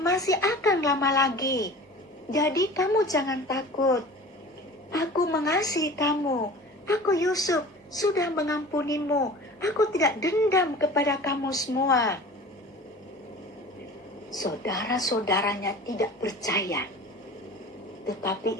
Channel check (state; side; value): normal; both; correlation 0.40